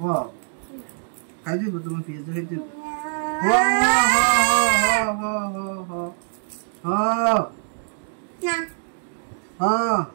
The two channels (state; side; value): silent; left; digital silence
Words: খাই দিব তোমার পিঁয়াজটা খাইতে দিব।